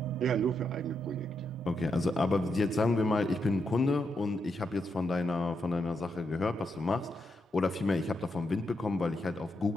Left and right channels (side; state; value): both; normal; correlation 0.82